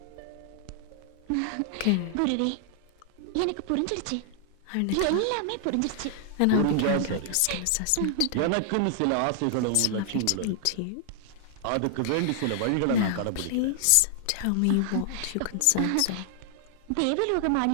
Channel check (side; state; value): both; different; correlation 0.00